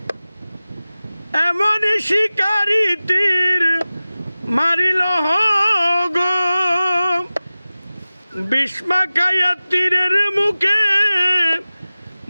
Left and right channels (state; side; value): inverted; both; correlation -0.97